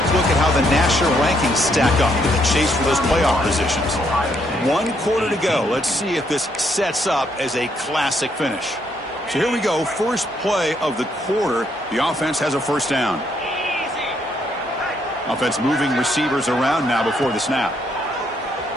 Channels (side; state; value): both; normal; correlation 0.73